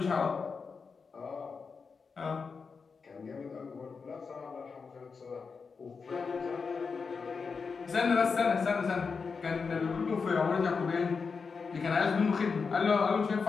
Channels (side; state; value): right; quieter; 5.2 dB